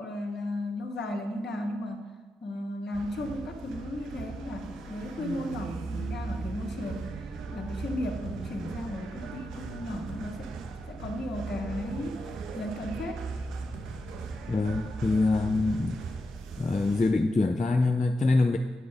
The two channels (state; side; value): normal; both; correlation 0.88